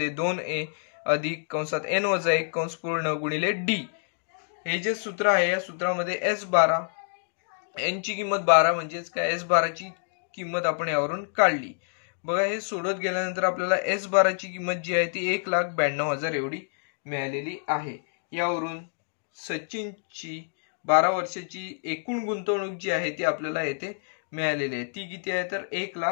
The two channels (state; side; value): silent; right; digital silence